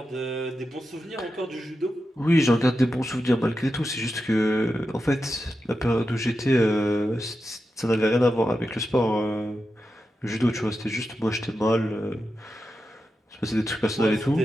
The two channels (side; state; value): both; normal; correlation 0.90